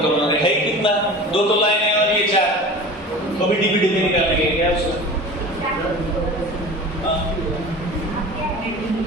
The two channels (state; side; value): normal; both; correlation 0.37